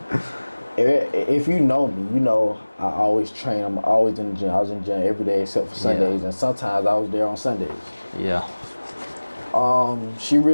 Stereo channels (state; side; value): inverted; both; correlation -1.00